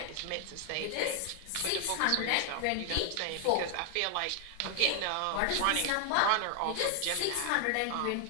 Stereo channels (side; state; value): both; different; correlation 0.00